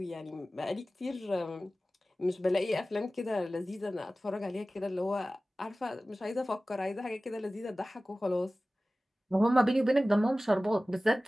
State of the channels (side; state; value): both; normal; correlation 0.97